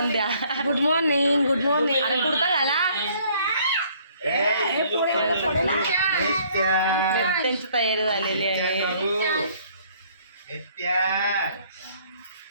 द्या. Good morning, good morning. अरे कुर्ता घाला. त्यांची तयारी झालेली आहे.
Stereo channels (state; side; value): inverted; both; correlation -0.61